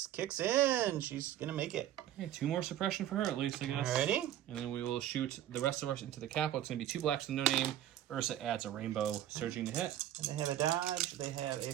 kicks in. She's going to make it. Okay, 2 more suppression for her at least, I guess. Alrighty. And then we will shoot the rest of us into the capo. It's going to be 2 blacks with no name. Ursa adds a rainbow surging to hit. And they have a dodge, they have a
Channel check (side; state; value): left; quieter; 12.0 dB